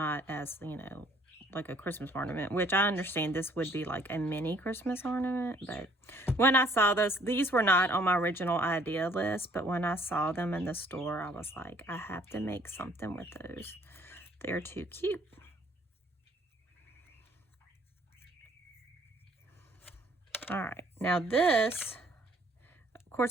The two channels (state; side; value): normal; both; correlation 0.60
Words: as, you know, like a Christmas ornament, which I understand this would be like a mini Christmas ornament. But when I saw these were not on my original idea list, but when I saw them in the store, I was like, I have to make something with those. They're too cute. All right, now this, of